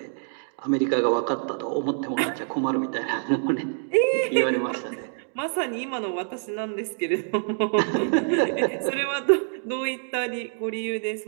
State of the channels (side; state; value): left; silent; digital silence